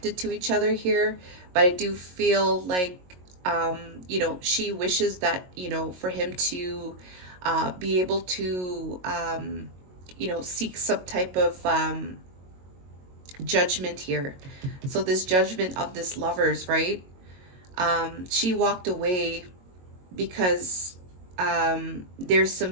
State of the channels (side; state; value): left; late; 22 ms